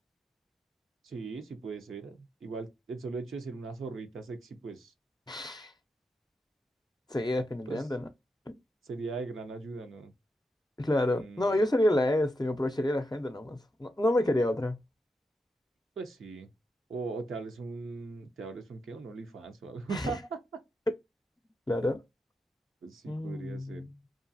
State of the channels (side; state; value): both; normal; correlation 0.85